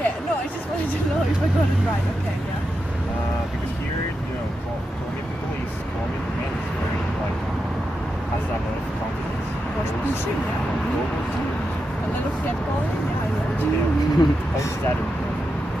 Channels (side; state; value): both; normal; correlation 0.87